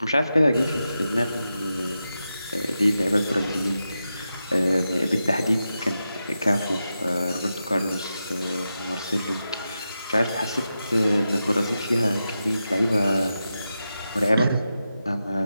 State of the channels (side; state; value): both; inverted; correlation -0.89